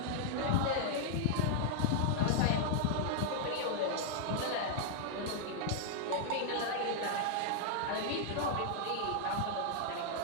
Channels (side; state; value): both; different; correlation -0.01